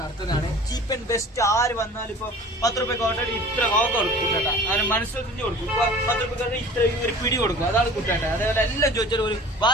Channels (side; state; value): both; normal; correlation 0.44